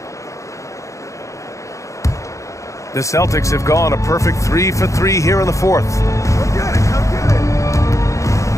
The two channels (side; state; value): right; late; 0.15 ms